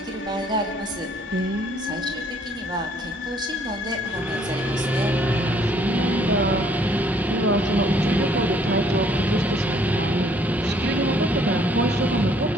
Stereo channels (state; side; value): normal; both; correlation 0.63